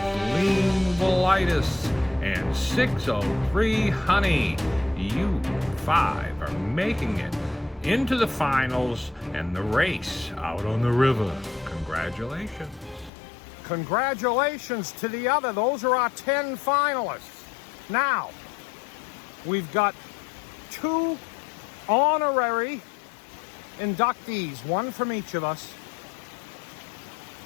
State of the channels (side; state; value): right; drops out; at 13.1 s